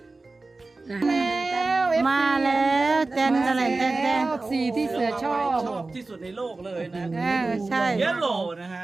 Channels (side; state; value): left; quieter; 3.4 dB